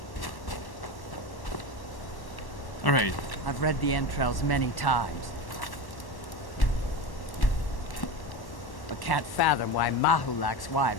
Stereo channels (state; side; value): late; right; 1.1 ms